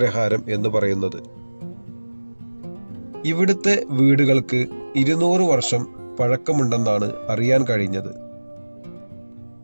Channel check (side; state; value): both; inverted; correlation -1.00